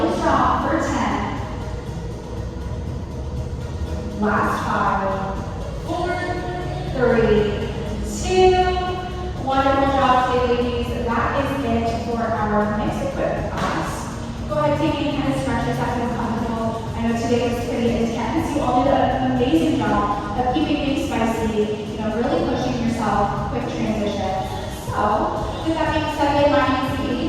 strong for 10. Last 5, 4, 3, 2, wonderful job today, ladies. That is it for our mixed equipment class. Go ahead, take any kind of stretch if that feels comfortable. I know today was pretty intense. You all did an amazing job of keeping things spicy, really pushing yourself, quick transition. So, with that being said, my name is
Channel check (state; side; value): identical; both; correlation 1.00